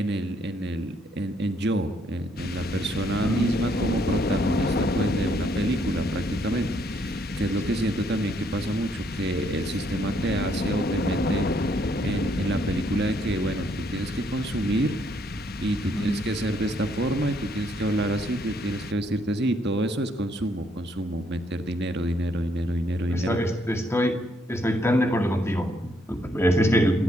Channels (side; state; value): both; normal; correlation 0.70